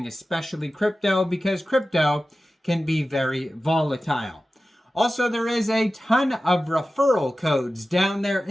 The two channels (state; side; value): normal; both; correlation 0.95